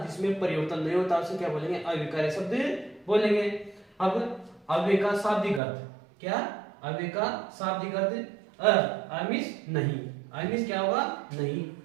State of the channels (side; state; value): left; drops out; at 5.6 s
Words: जिसमें परिवर्तन नहीं होता उसे क्या बोलेंगे? अविकारी शब्द बोलेंगे। अब अव्यय का शाब्दिक अर्थ क्या? अव्यय का शाब्दिक अर्थ अमिश नहीं। अमिश क्या होगा? नहीं।